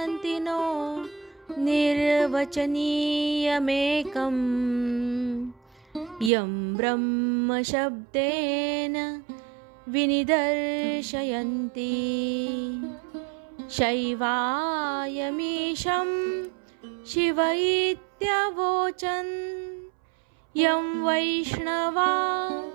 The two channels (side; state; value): left; drops out; at 6.3 s